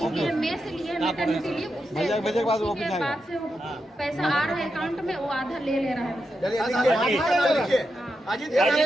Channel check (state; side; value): normal; both; correlation 0.87